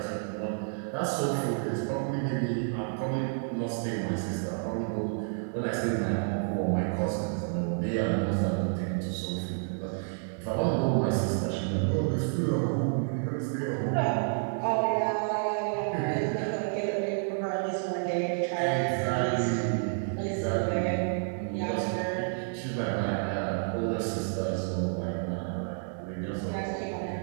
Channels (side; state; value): left; silent; digital silence